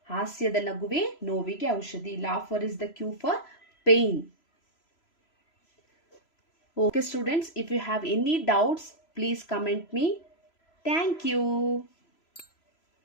ಹಾಸ್ಯದ ನಗುವೆ ನೋವಿಗೆ ಔಷಧಿ. Laughter is the cure for pain. Okay students, if you have any doubts, please comment me. Thank you.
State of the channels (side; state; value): right; late; 3.0 ms